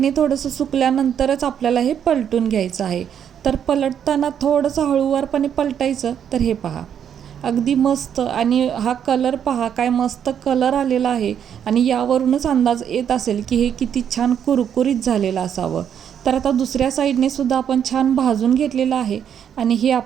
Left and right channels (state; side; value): quieter; left; 8.7 dB